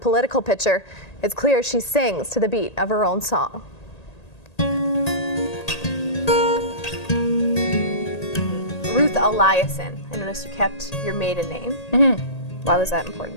picture, it's clear she sings to the beat of her own song. Ruth Eliason. I noticed you kept your maiden name. Mm-hmm. Why was that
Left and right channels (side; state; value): right; late; 1.8 ms